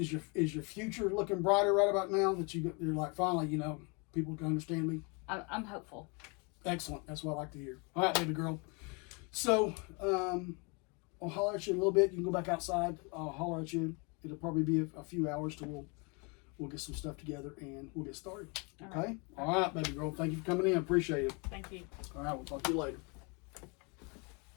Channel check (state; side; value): quieter; right; 32.1 dB